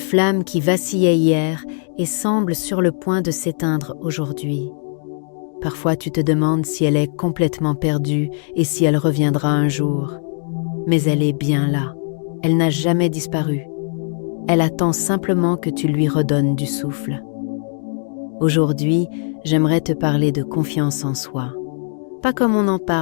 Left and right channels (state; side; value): silent; right; digital silence